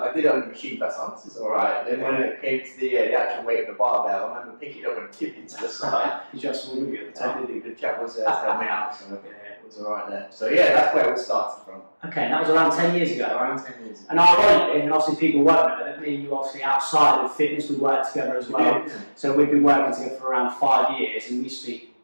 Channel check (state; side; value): inverted; both; correlation -1.00